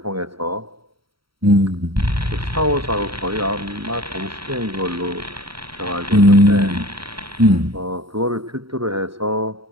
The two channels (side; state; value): left; late; 0.75 ms